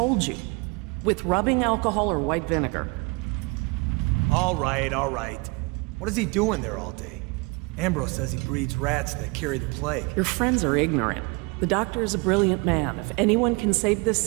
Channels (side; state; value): left; quieter; 28.6 dB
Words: you. With rubbing alcohol or white vinegar. All right, all right. What is he doing there all day? Ambrose says he breeds rats that carry the plague. Your friends are ignorant. The doctor is a brilliant man. If anyone can save this